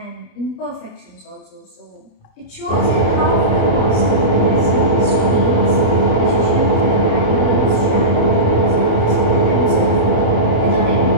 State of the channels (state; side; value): late; right; 28 ms